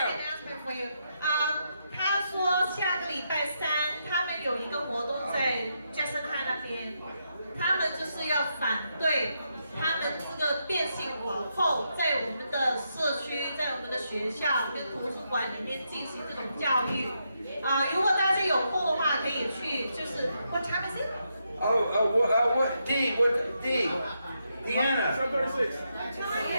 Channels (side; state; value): both; inverted; correlation -0.81